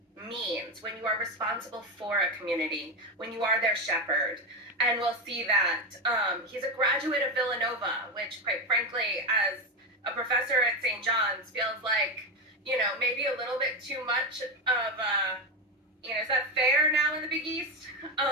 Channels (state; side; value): normal; both; correlation 0.13